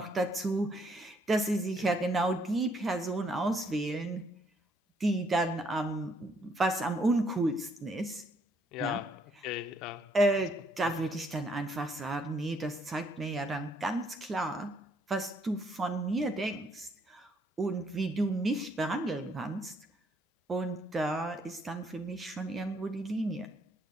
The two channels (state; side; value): normal; both; correlation 0.69